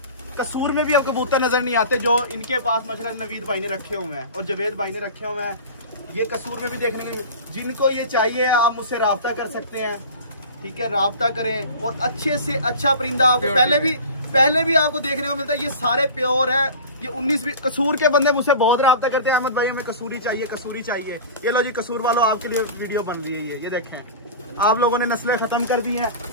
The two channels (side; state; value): both; inverted; correlation -0.35